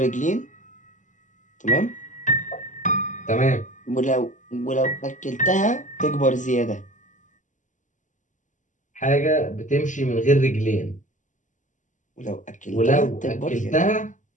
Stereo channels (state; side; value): late; right; 0.37 ms